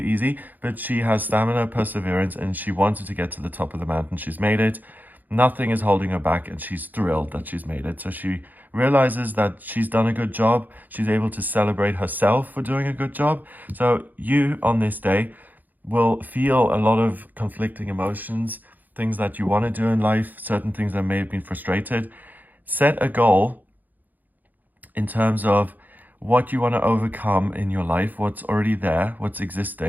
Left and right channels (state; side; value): late; left; 0.084 ms